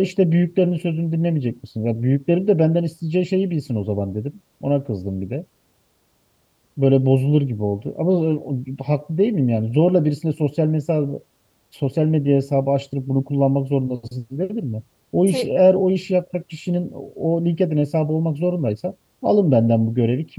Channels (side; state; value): both; identical; correlation 1.00